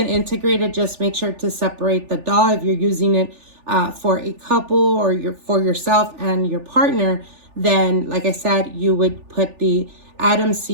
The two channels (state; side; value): late; left; 3.4 ms